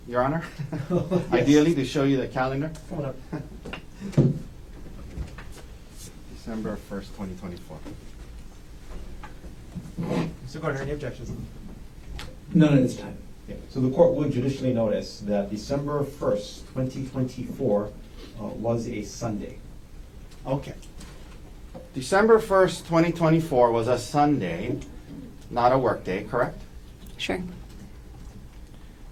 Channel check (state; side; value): identical; both; correlation 1.00